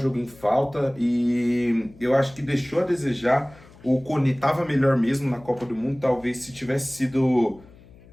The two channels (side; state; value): left; noise; hum, 24 dB below the sound